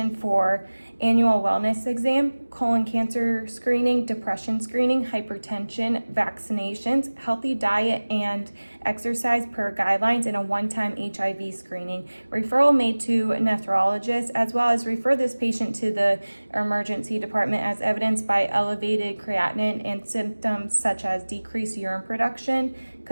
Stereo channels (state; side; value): inverted; both; correlation -1.00